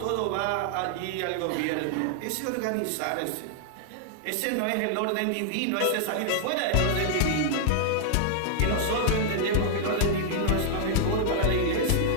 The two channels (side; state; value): both; different; correlation -0.01